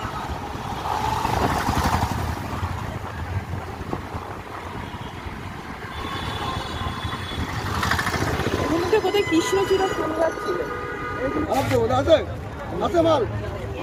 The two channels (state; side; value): identical; both; correlation 1.00